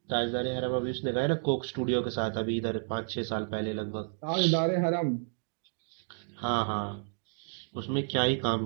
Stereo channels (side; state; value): left; silent; digital silence